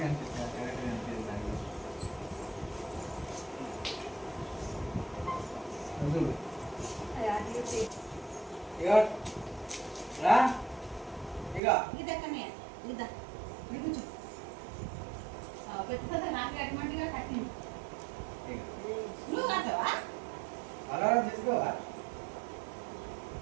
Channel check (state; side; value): drops out; left; at 11.6 s